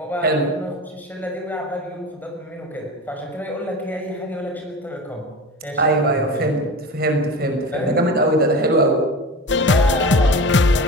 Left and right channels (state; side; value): normal; both; correlation 0.31